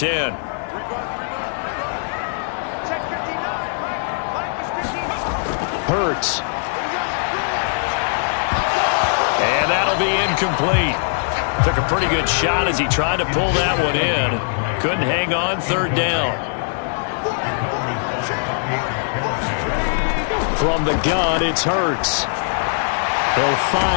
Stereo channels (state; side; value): silent; right; 65 dB below the other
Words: Hurts. And that'll be incomplete. Took a pretty good shot as he tried to pull that one in. Couldn't hang on, 3rd down. From the gun, it's Hurts. They'll